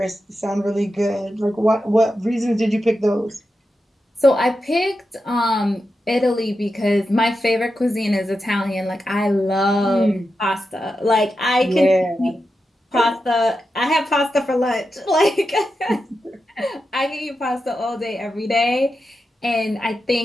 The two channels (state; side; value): normal; both; correlation 0.89